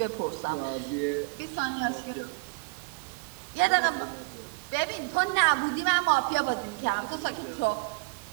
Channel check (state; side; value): quieter; left; 28.2 dB